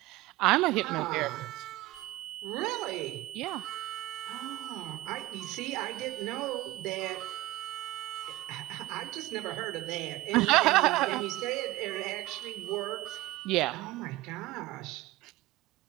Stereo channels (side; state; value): left; quieter; 18.0 dB